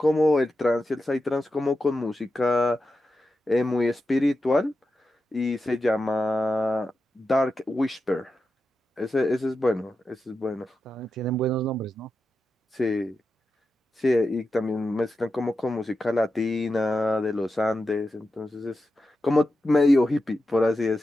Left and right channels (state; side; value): normal; both; correlation 0.90